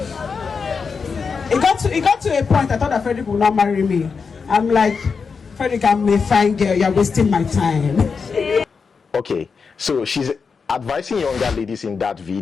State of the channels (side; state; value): right; quieter; 5.3 dB